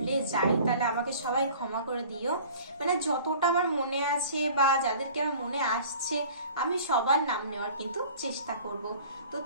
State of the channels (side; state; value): both; inverted; correlation -0.46